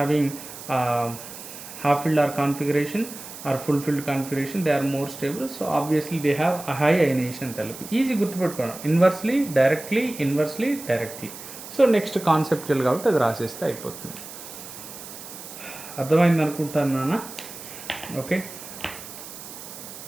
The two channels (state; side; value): noise; right; hiss, 13 dB below the sound